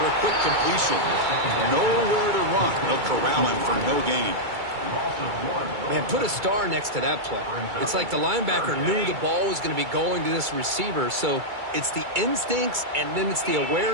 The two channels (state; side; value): late; left; 2.3 ms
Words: a quick completion. Nowhere to run. They'll corral him for no gain. Man, put a star next to that play. It's like the linebacker knew the ball was going to be going to this receiver, so it's the instincts and then it's the